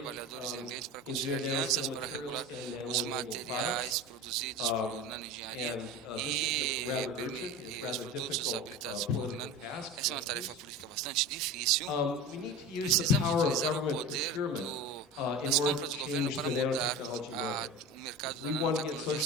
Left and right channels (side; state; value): both; normal; correlation 0.31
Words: e ambientes para construir alianças para regular os materiais produzidos por nanoengenharia e os produtos habilitados por nano. Essa é uma tarefa política bastante difícil. Precisamos utilizar o poder das compras do governo para mudar o mercado da nanotecnologia.